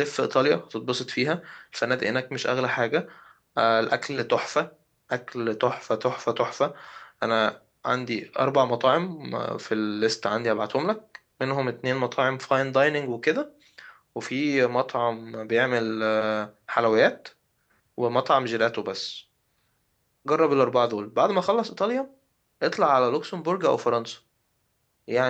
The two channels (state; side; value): identical; both; correlation 1.00